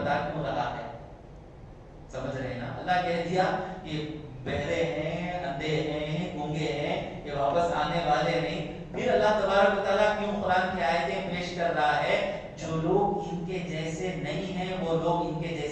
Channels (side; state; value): both; identical; correlation 1.00